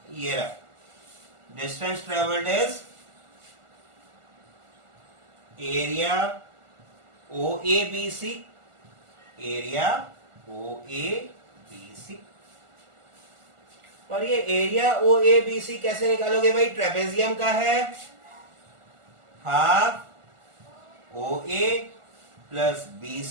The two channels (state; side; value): late; left; 1.4 ms